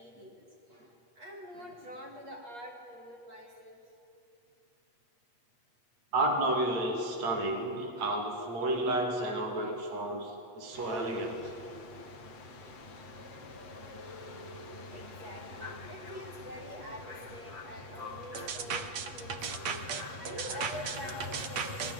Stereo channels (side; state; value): left; late; 8.3 ms